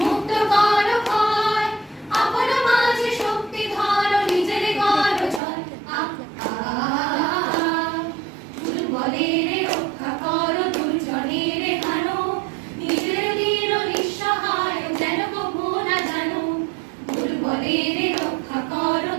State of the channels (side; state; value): left; drops out; at 5.4 s